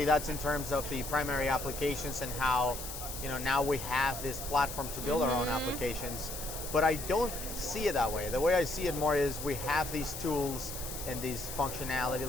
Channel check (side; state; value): left; noise; hiss, 8 dB below the sound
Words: that's in terms of the primary applications and how, now we have this platform to build our own applications. but I don't see it that way. The way I see it more is we have these tools and these functionality,